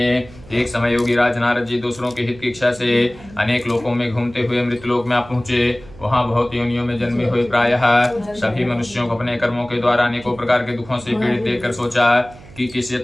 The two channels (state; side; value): noise; right; hum, 20 dB below the sound